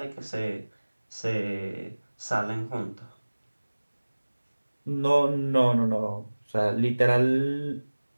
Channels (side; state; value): both; inverted; correlation -1.00